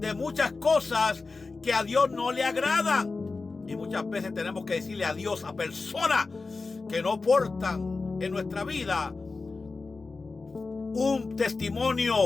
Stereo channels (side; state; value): right; quieter; 4.0 dB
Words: muchas cosas que a Dios no le agradan. Y muchas veces tenemos que decirle adiós a personas que no aportan en nuestra vida un